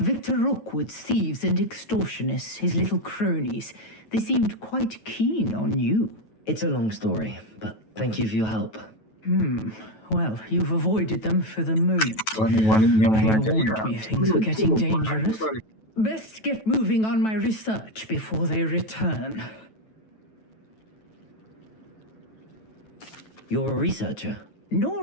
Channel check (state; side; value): late; right; 9.2 ms